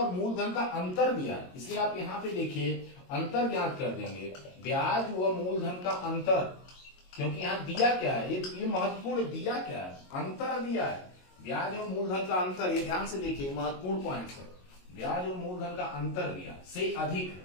मूलधन का अंतर दिया। इसलिए आप यहाँ पे देखिए अंतर ज्ञात कर देंगे, ब्याज व मूलधन का अंतर, क्योंकि यहाँ दिया क्या है, ये महत्वपूर्ण, दिया क्या है, अंतर दिया है, ब्याज और मूलधन का अंतर। ये ध्यान से देखिए, महत्वपूर्ण पॉइंट है, ब्याज और मूलधन का अंतर दिया से अधिक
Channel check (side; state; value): right; late; 22 ms